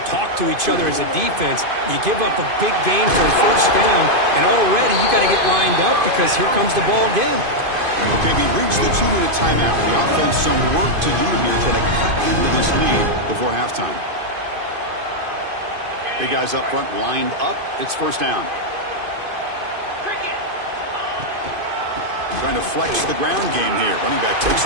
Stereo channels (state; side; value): late; left; 2.5 ms